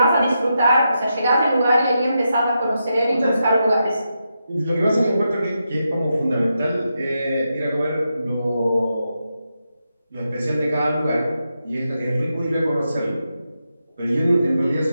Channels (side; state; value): both; inverted; correlation -0.86